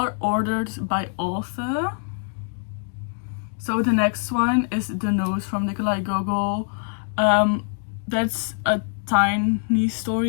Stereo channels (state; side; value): silent; right; 63 dB below the other